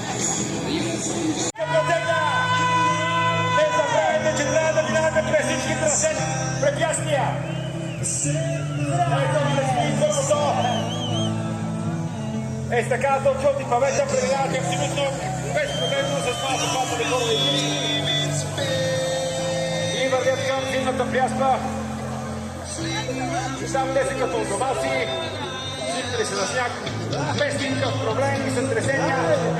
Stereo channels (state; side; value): identical; both; correlation 1.00